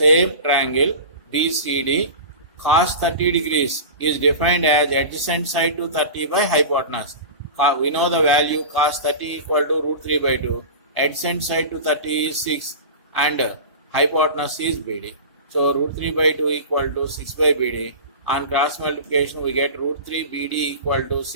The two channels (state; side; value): inverted; both; correlation -0.32